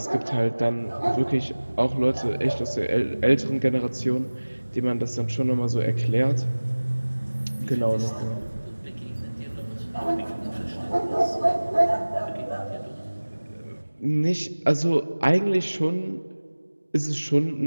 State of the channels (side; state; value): both; inverted; correlation -1.00